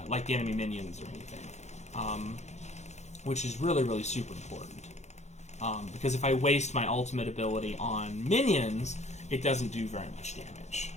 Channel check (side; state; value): right; late; 0.33 ms